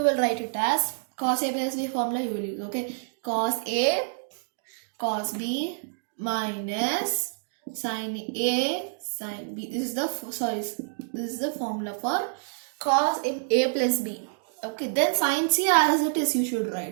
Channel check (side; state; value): left; silent; digital silence